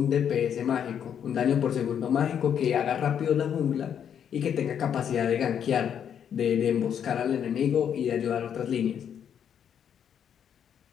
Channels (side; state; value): right; quieter; 8.6 dB